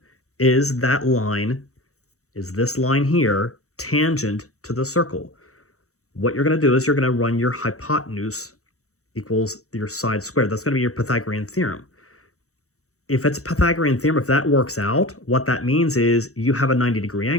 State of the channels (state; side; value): late; right; 0.65 ms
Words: Is that line, is this line here tangent to the circle? What you're going to do is you're going to run your hypotenuse equals your side squared. That's going to be your Pythagorean theorem. If it's a Pythagorean theorem, if that works out, what that means is you have a 90-degree